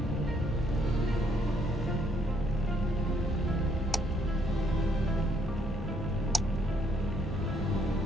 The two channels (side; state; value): both; normal; correlation 0.70